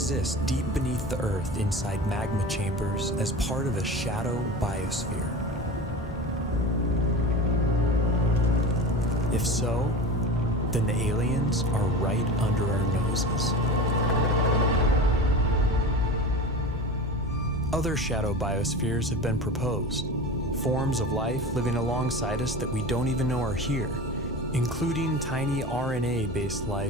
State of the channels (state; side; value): normal; both; correlation 0.31